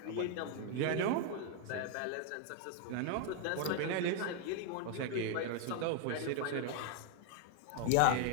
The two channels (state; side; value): different; both; correlation 0.01